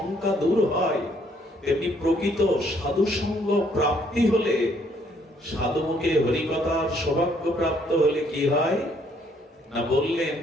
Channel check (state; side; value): normal; both; correlation 0.66